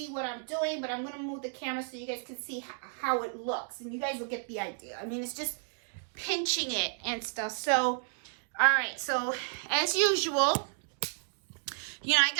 what I'm doing, but I'm going to move the camera so you guys can see how it looks. And you guys will get the idea. I mean, it's just pinching it and stuff. So, all right. So, as usual, you know, I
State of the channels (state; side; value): silent; left; 56 dB below the other